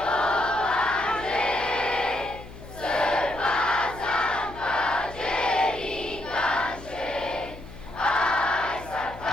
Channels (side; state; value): left; noise; hum, 16 dB below the sound